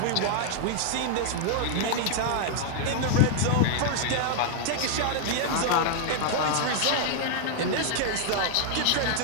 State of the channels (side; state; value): both; different; correlation -0.01